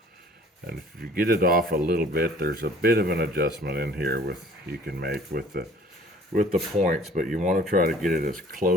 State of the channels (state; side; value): normal; both; correlation 0.53